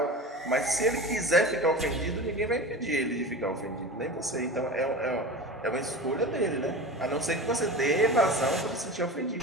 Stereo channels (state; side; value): normal; both; correlation 0.31